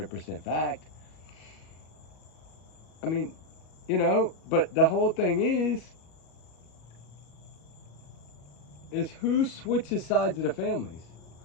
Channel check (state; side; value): late; right; 37 ms